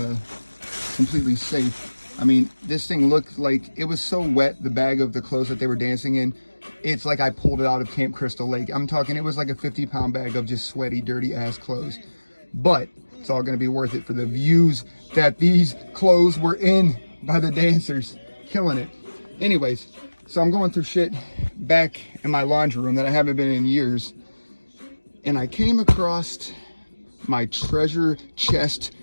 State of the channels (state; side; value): inverted; both; correlation -1.00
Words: completely safe. I mean, this thing looked like it was so wet, the bag of the clothes that they were dancing in. It's like I pulled it out of Camp Crystal Lake. I'm talking, it was like a 50-pound bag of just sweaty, dirty ass clothes. But it's all going to be worth it for the views that these clothes were in by the dancers. Killing it. Anyways, so I'm going through shit back in my laundry room that I haven't been in years. And I came across my treasure chest